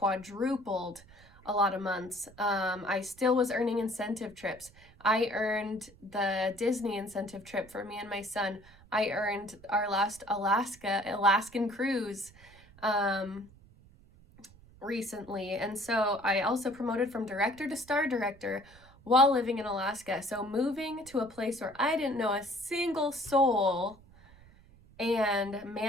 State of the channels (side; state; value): right; noise; rumble, 24 dB below the sound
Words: a lot of months. I still was earning incentive trips. I earned the Disney incentive trip for me and my son. I earned our last Alaskan cruise recently. And so I also promoted from director to star director while living in Alaska. So moving to a place where I didn't know a single soul and